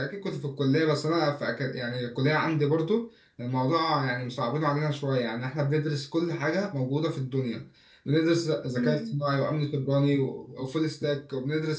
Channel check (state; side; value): identical; both; correlation 1.00